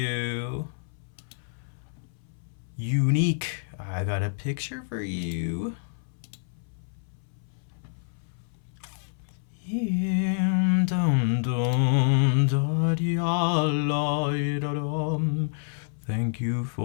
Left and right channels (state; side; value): silent; right; 59 dB below the other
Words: Unique. I got a picture for you. Thank you